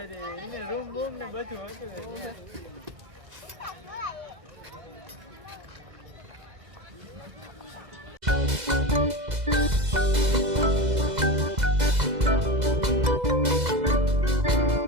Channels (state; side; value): late; left; 2.0 ms